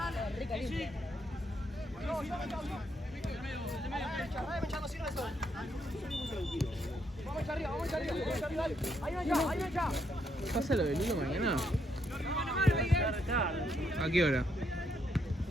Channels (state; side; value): normal; both; correlation 0.76